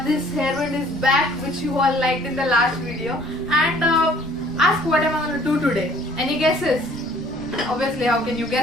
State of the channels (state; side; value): noise; right; rumble, 15 dB below the sound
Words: this hairband is back, which you all liked in the last video. And ask what am I going to do today? Any guesses? Obviously, how can you